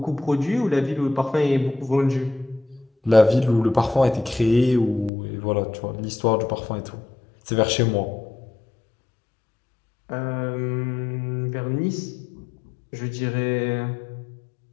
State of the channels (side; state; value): right; drops out; at 5.1 s